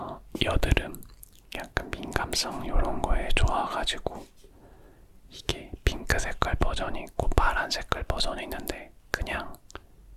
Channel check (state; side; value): identical; both; correlation 1.00